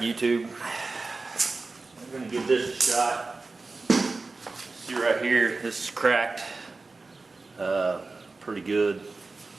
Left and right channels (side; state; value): left; quieter; 3.7 dB